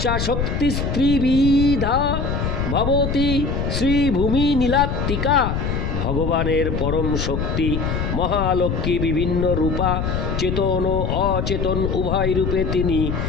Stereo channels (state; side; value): noise; left; rumble, 1 dB below the sound